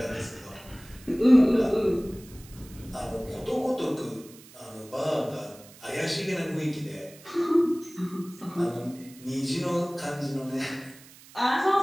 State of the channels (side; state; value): right; noise; hiss, 21 dB below the sound